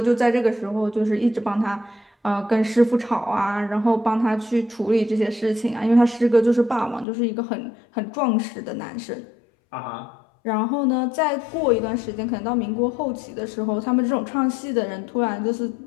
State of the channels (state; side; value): drops out; right; at 7.1 s